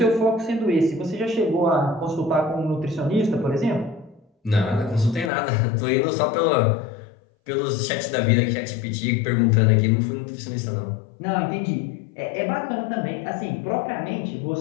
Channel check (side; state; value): right; drops out; at 5.3 s